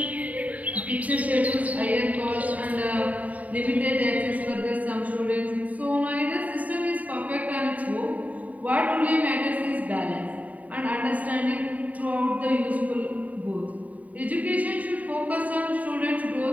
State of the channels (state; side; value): late; left; 0.071 ms